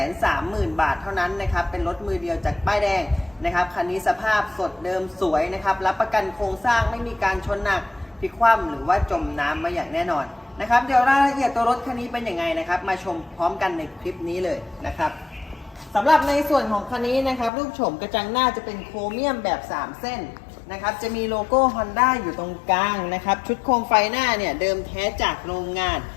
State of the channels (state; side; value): drops out; right; at 17.5 s